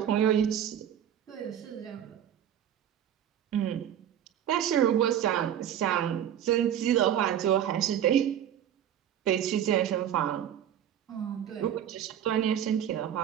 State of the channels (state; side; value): quieter; left; 10.1 dB